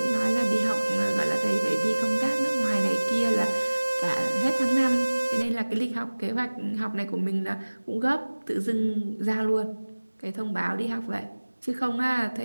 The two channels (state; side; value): inverted; both; correlation -1.00